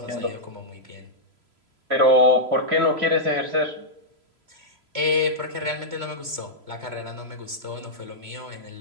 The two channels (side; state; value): left; late; 3.0 ms